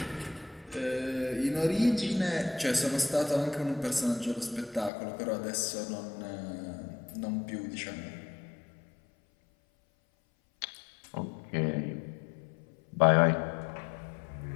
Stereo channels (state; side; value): drops out; right; at 4.9 s